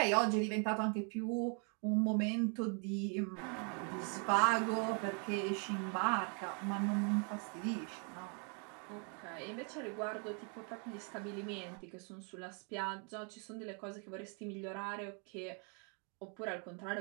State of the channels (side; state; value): left; quieter; 39.4 dB